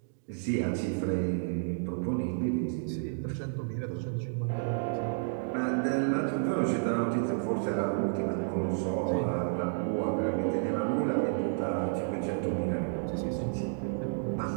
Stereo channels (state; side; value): silent; left; digital silence